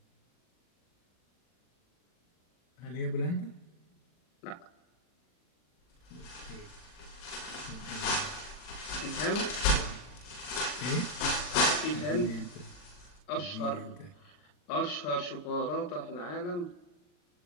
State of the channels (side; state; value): right; late; 40 ms